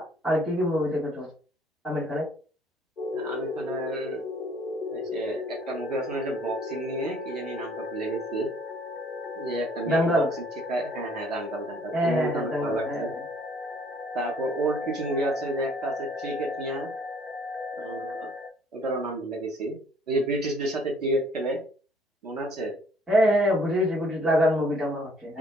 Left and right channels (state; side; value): normal; both; correlation 0.60